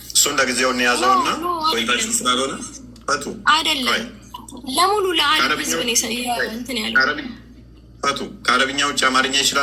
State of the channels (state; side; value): identical; both; correlation 1.00